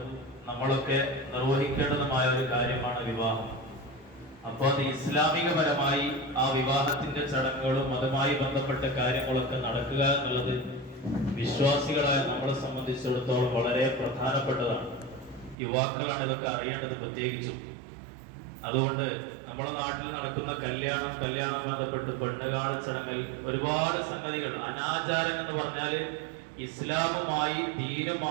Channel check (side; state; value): left; drops out; at 15.6 s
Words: നമ്മളൊക്കെ നിർവഹിക്കേണ്ടതുമായ ഒരു കാര്യമാണ് വിവാഹം. അപ്പോൾ അത് ഇസ്ലാമികപരമായി ആ വിവാഹത്തിന്റെ ചടങ്ങുകളും അതുമായി ബന്ധപ്പെട്ട കാര്യങ്ങളൊക്കെ നടക്കുക എന്നുള്ളത് വിശ്വാസികളായ നമ്മളെ സംബന്ധിച്ചിടത്തോളം വളരെ പ്രധാനപ്പെട്ടതാണ്. യുവാക്കളാണ് ഇതൊക്കെ അറിയേണ്ടത് പ്രത്യേകിച്ചും. അതുകൊണ്ട് നമ്മുടെ നാട്ടിൽ നടക്കുന്ന കല്യാണം ബന്ധപ്പെട്ട് പെണ്ണുകാണൽ ചടങ്ങിൽ ഒരുപാട് സംഗതികൾ, അനാചാരം എന്ന് പറഞ്ഞാല് ഇസ്ലാമുമായി